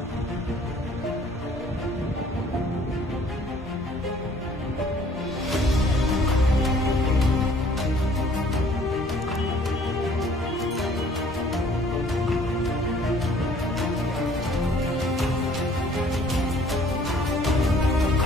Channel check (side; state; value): both; normal; correlation 0.56